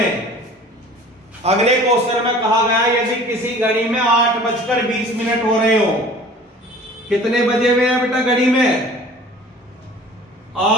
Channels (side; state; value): both; normal; correlation 0.46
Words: अगले क्वेश्चन में कहा गया यदि किसी घड़ी में 8:20 हो रहे हो, कितने बजे हुए हैं बेटा घड़ी में?